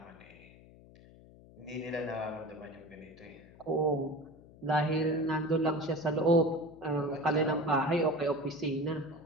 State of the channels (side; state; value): left; noise; hum, 22 dB below the sound